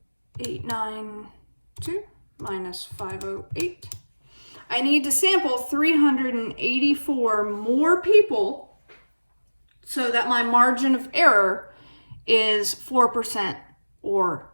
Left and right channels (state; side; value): inverted; both; correlation -1.00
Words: 892 minus 508. I need to sample 384 more people so that my margin of error is 4% or